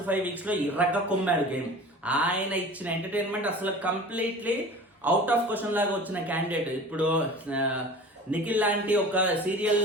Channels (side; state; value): both; normal; correlation 0.40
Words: 5 weeks లో ఇర్రగా కొమ్మాడు గేమ్. ఆయన ఇచ్చిన ఎంటర్టైన్మెంట్ అసలు కంప్లీట్లీ అవుట్ ఆఫ్ క్వశ్చన్ లాగా వచ్చిన క్యాండిడేట్. ఇప్పుడు నిఖిల్ లాంటి ఒక